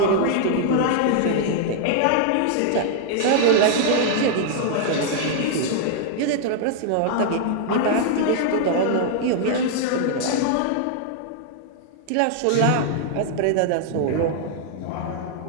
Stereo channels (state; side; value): different; both; correlation -0.01